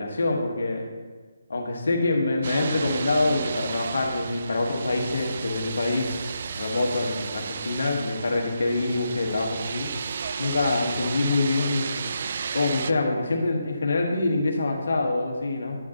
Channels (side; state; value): both; inverted; correlation -0.83